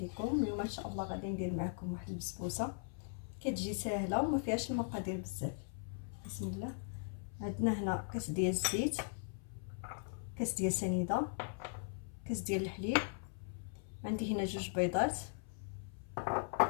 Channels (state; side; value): silent; right; 52 dB below the other